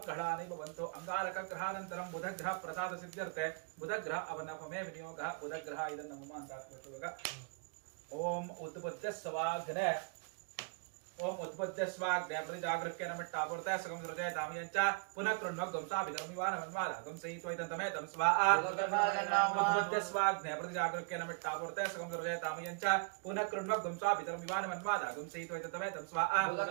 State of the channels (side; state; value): left; quieter; 34.2 dB